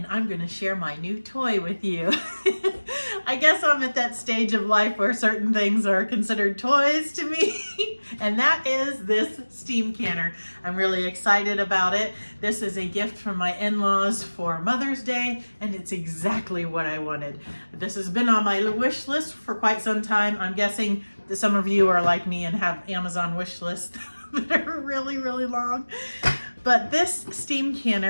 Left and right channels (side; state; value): both; inverted; correlation -1.00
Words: I'm going to share my new toy with you. I guess I'm at that stage of life where certain things are considered toys to me and that is this steam canner. I'm really excited about it. This is a gift from my in-laws for Mother's Day and it's exactly what I wanted. This has been on my wish list for quite some time. I'm guessing that some of you are like me and have Amazon wish lists that are really long. But this steam